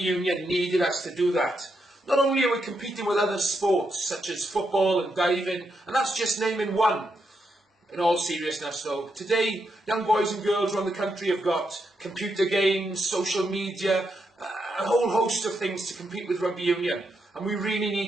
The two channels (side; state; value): both; normal; correlation 0.82